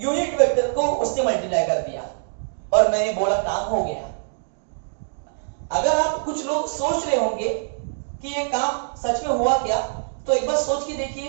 वेक्टर को उससे मल्टीप्लाई कर दिया और मैंने बोला काम हो गया। अगर आप कुछ लोग सोच रहे होंगे कि ये काम सच में हुआ क्या, तो एक बार सोच के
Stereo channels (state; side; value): silent; left; digital silence